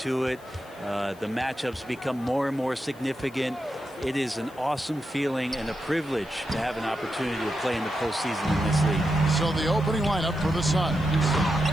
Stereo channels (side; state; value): left; noise; hiss, 26 dB below the sound